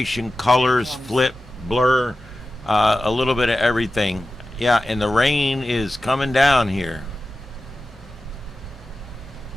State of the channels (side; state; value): both; normal; correlation 0.94